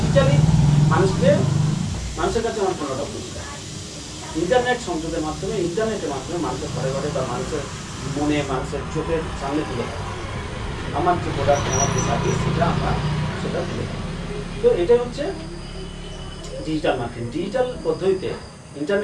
মানুষের কাছে আমার পণ্যটা পৌঁছে দেয়। ইন্টারনেট সংযোগের মাধ্যমে, ইন্টারনেটের মাধ্যমে মানুষের ঘরে ঘরে বা মানুষের মনে, মানুষের চোখের সামনে তুলে দেয় আমার যে প্রোডাক্ট, আমার যে সার্ভিস, সেটা তুলে দেয়। তো এটাই হচ্ছে ডিজিটাল মার্কেটিং। ডিজিটাল পদ্ধতিতে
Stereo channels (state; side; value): identical; both; correlation 1.00